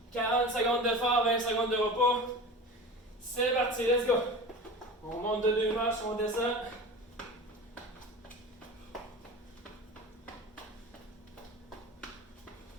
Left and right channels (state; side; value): normal; both; correlation 0.34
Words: 40 secondes d'effort, 20 secondes de repos. C'est parti, let's go. On monte de 2 marches, on descend.